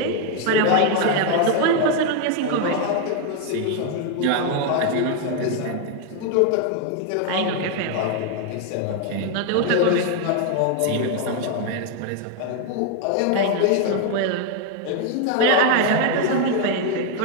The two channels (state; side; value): different; both; correlation 0.00